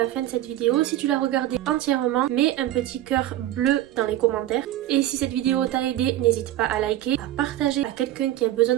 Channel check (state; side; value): quieter; left; 13.6 dB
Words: fin de cette vidéo. Si tu l'as regardée entièrement, mets un petit cœur bleu dans les commentaires. Et si cette vidéo t'a aidé, n'hésite pas à liker, à partager à quelqu'un qui a besoin